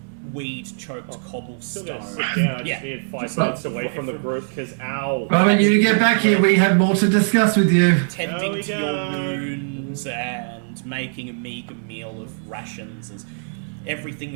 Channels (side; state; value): left; silent; digital silence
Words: weed-choked cobblestone. Still gotta sit down. I just need 5 minutes away from the group because ow. Well, when you get back here, we have more to discuss with you. Tending to your wounds and making a meager meal of rations as everything